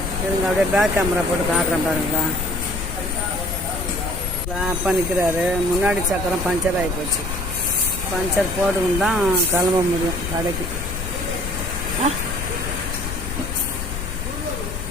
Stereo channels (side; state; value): left; noise; rumble, 5 dB below the sound